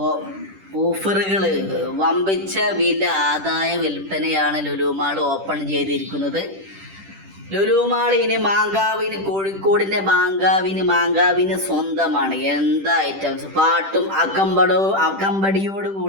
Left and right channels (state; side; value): late; left; 10 ms